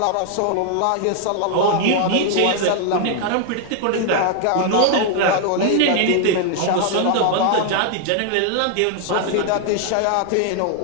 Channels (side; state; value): both; different; correlation 0.00